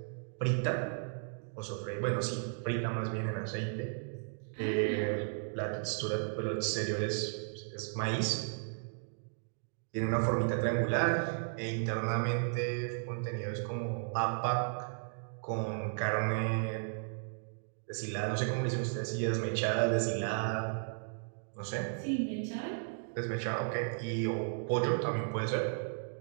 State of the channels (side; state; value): left; silent; digital silence